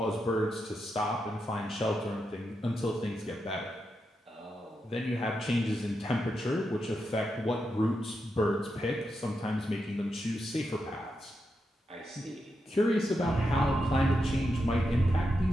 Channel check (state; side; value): normal; both; correlation 0.86